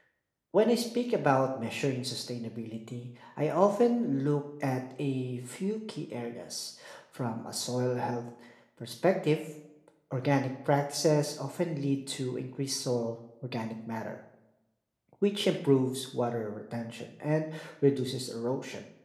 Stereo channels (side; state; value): both; identical; correlation 1.00